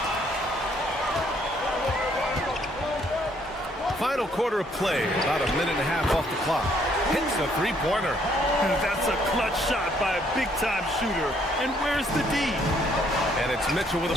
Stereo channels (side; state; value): both; normal; correlation 0.67